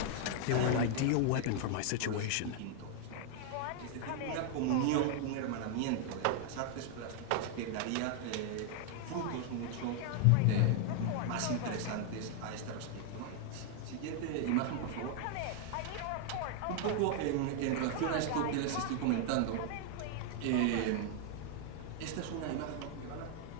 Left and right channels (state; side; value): different; both; correlation 0.00